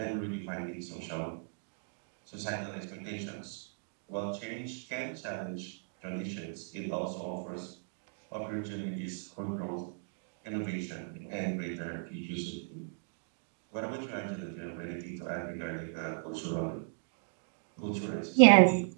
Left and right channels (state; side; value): silent; left; digital silence